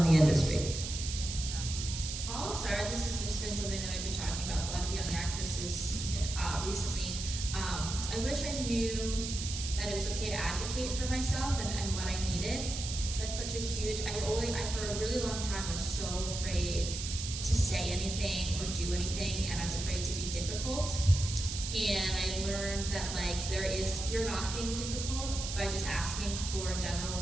the industry? I'll start. This has just been something that I've been talking about with a lot of young actresses recently. I wish I knew that it was okay to advocate for myself and what I needed. That's such a huge, for a really long time, I was so afraid to say anything or do anything, and I was afraid to be difficult. And I learned that you're not being difficult by just asking for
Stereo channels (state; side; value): noise; right; hiss, 6 dB below the sound